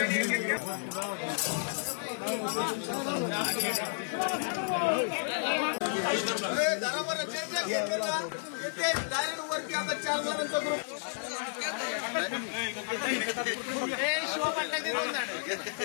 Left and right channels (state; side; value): silent; right; digital silence